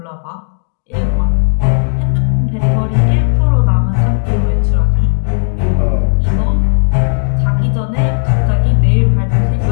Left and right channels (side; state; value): right; silent; 63 dB below the other